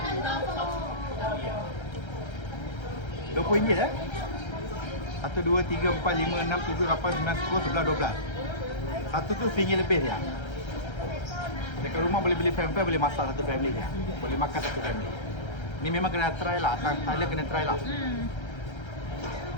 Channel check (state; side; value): late; right; 1.3 ms